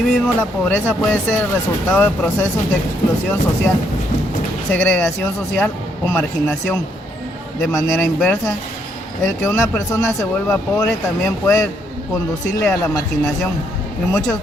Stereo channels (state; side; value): normal; both; correlation 0.73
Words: la pobreza puede ser el resultado de procesos de exclusión social, segregación social o marginación. De manera inversa, el que una persona se vuelva pobre también puede conducirle a la marginación. En muchos